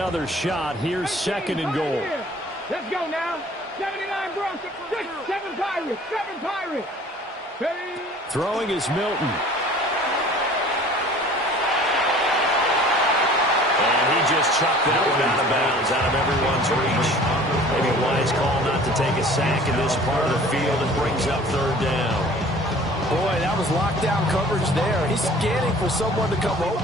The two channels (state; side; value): normal; both; correlation 0.48